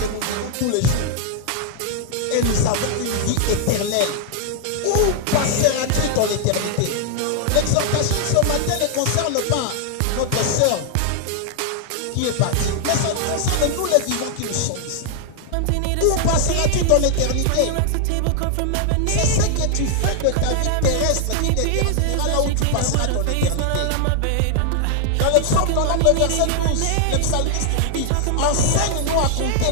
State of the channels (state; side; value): different; both; correlation 0.00